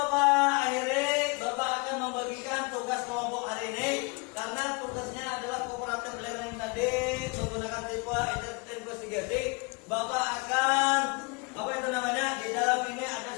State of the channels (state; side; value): quieter; right; 29.8 dB